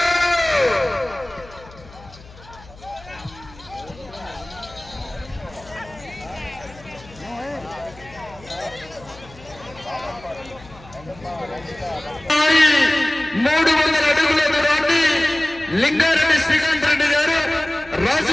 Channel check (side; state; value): left; noise; hum, 21 dB below the sound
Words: లింగారెడ్డి శ్రీకాంత్ రెడ్డి గారు